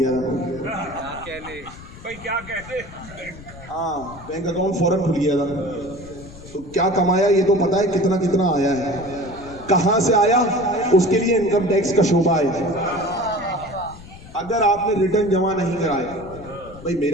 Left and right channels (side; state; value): left; noise; rumble, 17 dB below the sound